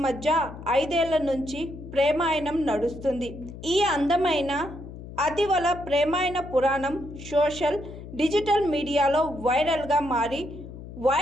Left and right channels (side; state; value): left; noise; hum, 13 dB below the sound